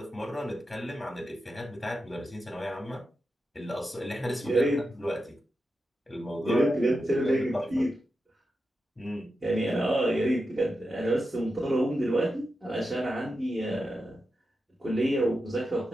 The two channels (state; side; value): normal; both; correlation 0.89